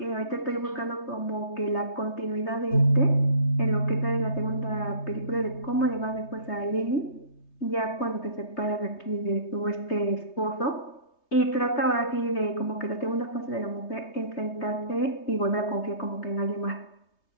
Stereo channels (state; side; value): late; right; 3.3 ms